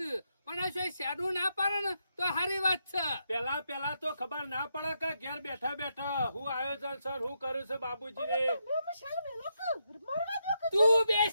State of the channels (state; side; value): inverted; both; correlation -0.82